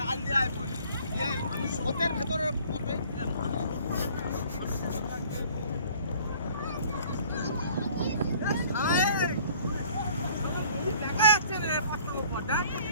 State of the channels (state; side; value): inverted; both; correlation -0.54